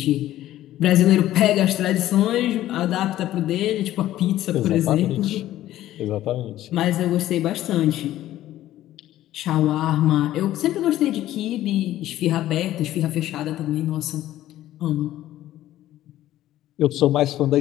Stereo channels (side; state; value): right; quieter; 13.8 dB